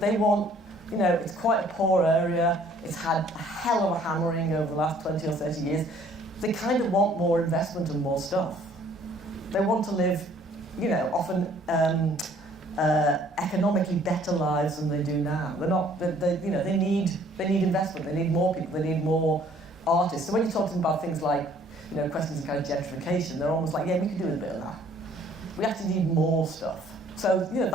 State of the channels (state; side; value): normal; both; correlation 0.58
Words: want, you know, it's quite a poor area, it's had a hell of a hammering over the last 20 or 30 years. They kind of want more investment and more stuff. They want to live, you know, often economically better lives than they do now. They need investment. They need more people. They need more artists. So when you talk to them about things like, you know, questions of kind of gentrification, they're almost like, yeah, we can do a bit of that. We actually need more stuff. So, you know,